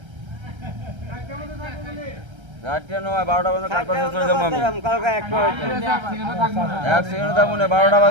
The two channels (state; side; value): late; left; 1.3 ms